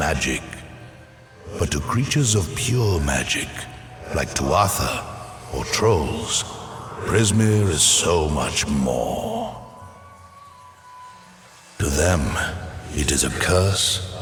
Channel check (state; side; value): identical; both; correlation 1.00